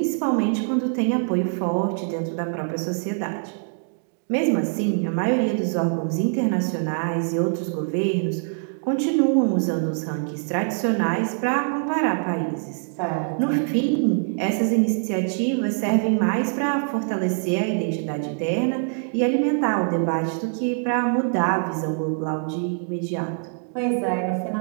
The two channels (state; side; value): silent; left; 63 dB below the other